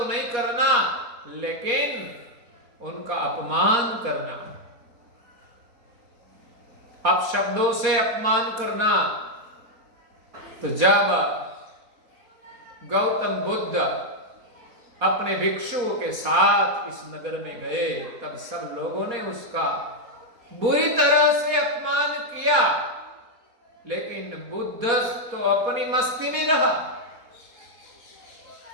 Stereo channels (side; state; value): left; late; 4.2 ms